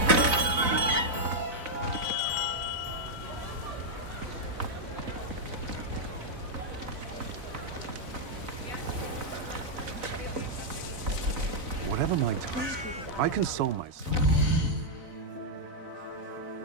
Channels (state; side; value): late; left; 4.0 ms